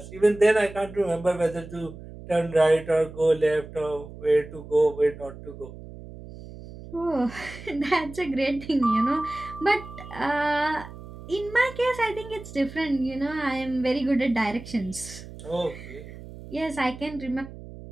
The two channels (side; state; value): right; noise; hum, 15 dB below the sound